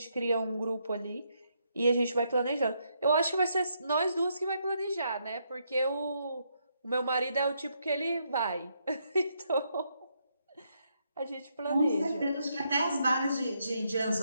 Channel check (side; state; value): both; inverted; correlation -0.77